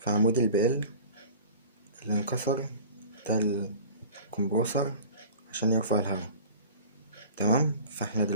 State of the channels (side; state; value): both; inverted; correlation -0.41